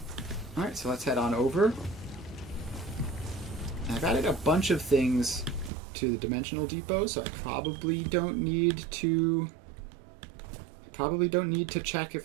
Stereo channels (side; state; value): left; drops out; at 5.7 s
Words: Alright, so let's head on over. I've added a bunch of things to the dimensional depot, so I probably don't need to check